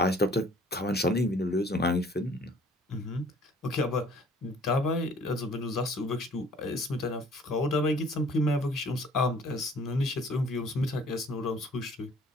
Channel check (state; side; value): normal; both; correlation 0.55